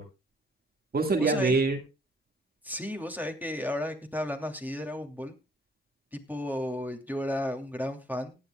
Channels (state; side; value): normal; both; correlation 0.61